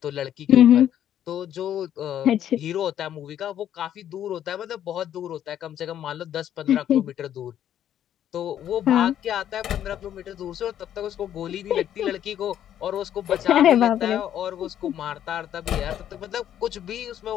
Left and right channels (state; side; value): quieter; right; 10.6 dB